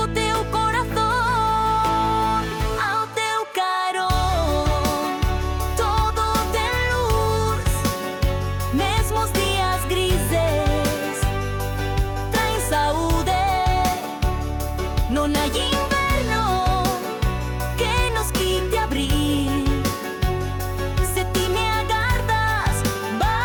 teu coração. Ao teu carão todo tem luz, mesmo os dias grises traz saúde. Não há inverno que nos quite abril. Se ti me agardas,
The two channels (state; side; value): identical; both; correlation 1.00